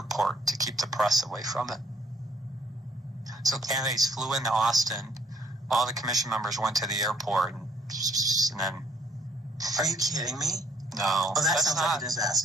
to keep the press away from it. So candidates flew into Austin. All the commission members went to the airport, and then. Are you kidding me? No. Oh, that sounds like a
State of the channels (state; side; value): normal; both; correlation 0.64